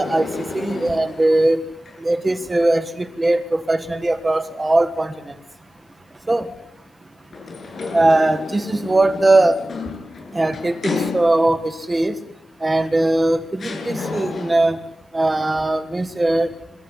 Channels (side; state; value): both; normal; correlation 0.97